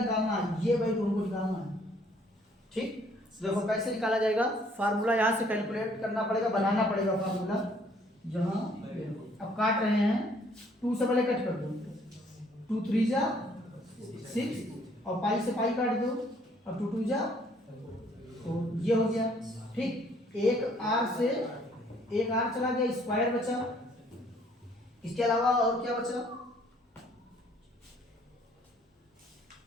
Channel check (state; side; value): normal; both; correlation 0.62